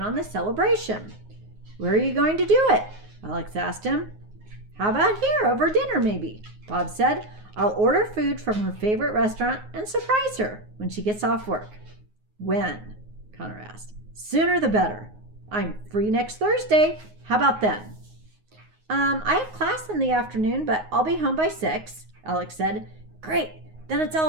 on the celebration. Where are you going to do it? Alex asked him. How about here, over dinner maybe? Bob said. I'll order food from her favorite restaurant and surprise her when she gets off work. When? Connor asked. Sooner the better. I'm free next Thursday. How about then? I have class in the afternoon, but I'll be home by 6, Alex said. Great, then it's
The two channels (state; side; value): late; left; 9.5 ms